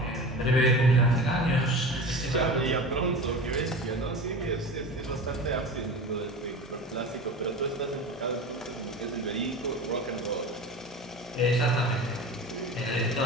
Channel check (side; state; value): both; normal; correlation 0.32